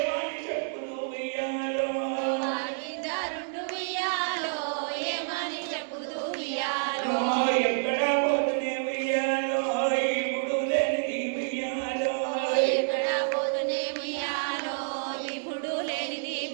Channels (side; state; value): left; silent; digital silence